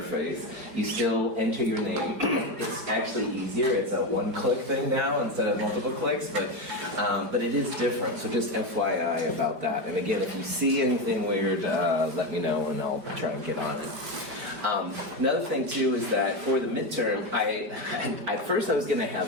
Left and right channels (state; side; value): late; left; 5.4 ms